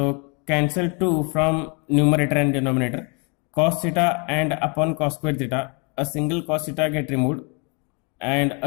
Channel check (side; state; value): right; quieter; 34.1 dB